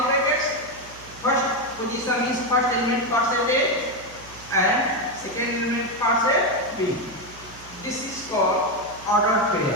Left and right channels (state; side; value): noise; right; hum, 20 dB below the sound